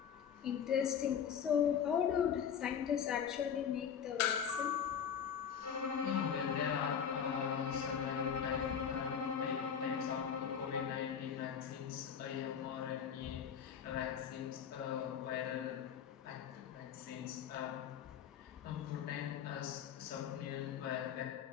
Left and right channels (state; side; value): quieter; right; 7.9 dB